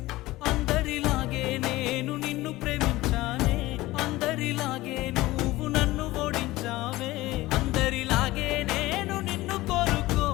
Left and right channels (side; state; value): right; quieter; 18.4 dB